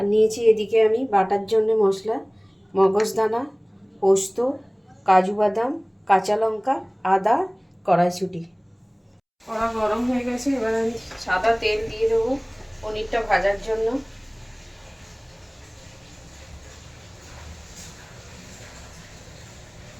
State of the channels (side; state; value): both; identical; correlation 1.00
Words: নিয়েছি এদিকে আমি বাটার জন্য মশলা, মগজদানা, পোস্ত, কাজু বাদাম, কাঁচা লঙ্কা, আদা, কড়াইশুঁটি। কড়া গরম হয়ে গেছে, এবার আমি সাদা তেল দিয়ে দেবো পনিরটা ভাজার জন্য।